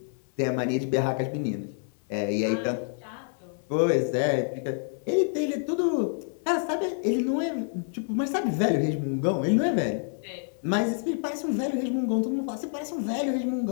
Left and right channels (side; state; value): right; silent; 60 dB below the other